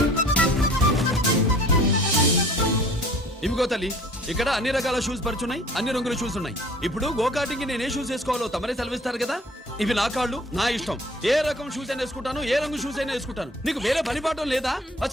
ఇవిగో తల్లి, ఇక్కడ అన్ని రకాల షూస్ పరుచున్నాయి, అన్ని రంగుల షూస్ ఉన్నాయి. ఇప్పుడు గోకాటింగ్ నేను ఏ షూస్ వేసుకోవాలో తమరే సెలవిస్తారు కదా. ఇవి నా కాళ్ళు, నా ఇష్టం. ఏ రకం షూస్ అయినా వేసుకుంటాను, ఏ రంగు షూస్ అయినా వేసుకుంటాను. నీకు వేరే పనిపాఠం లేదా?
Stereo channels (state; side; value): normal; both; correlation 0.50